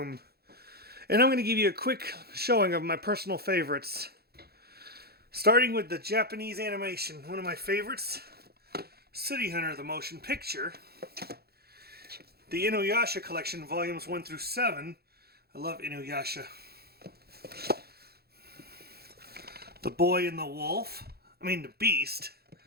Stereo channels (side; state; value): left; late; 0.46 ms